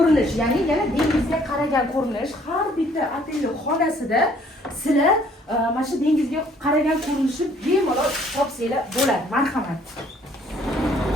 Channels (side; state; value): both; normal; correlation 0.61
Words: ya'ni yana dengizga qaragan ko'rinish. Har bitta otelning xonasida sizlar mana shu dengizga qaragan ko'rinishni bemalol topsanglar bo'ladi. Marhamat.